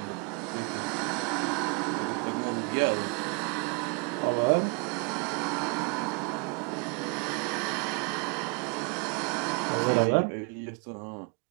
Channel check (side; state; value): left; quieter; 33.8 dB